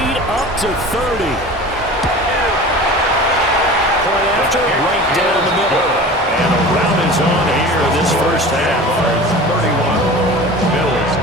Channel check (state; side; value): normal; both; correlation 0.37